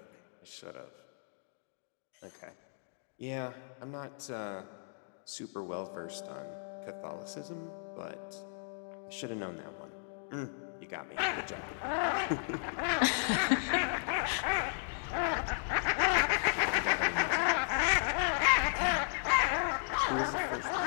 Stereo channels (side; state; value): right; silent; digital silence